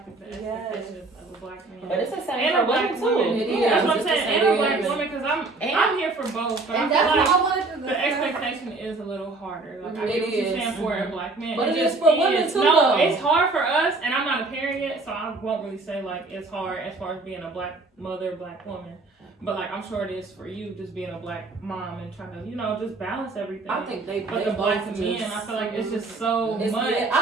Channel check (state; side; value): quieter; left; 3.4 dB